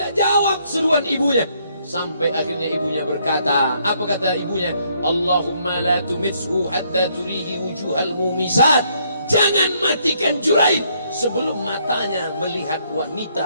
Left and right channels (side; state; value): both; inverted; correlation -0.70